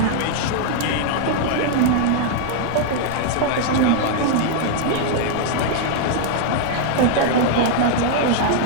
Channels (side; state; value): both; different; correlation 0.00